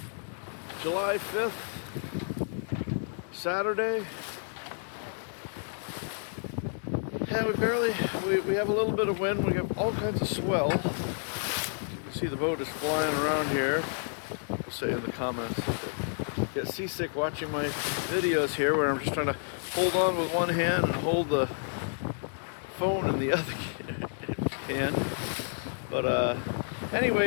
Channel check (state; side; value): silent; right; 58 dB below the other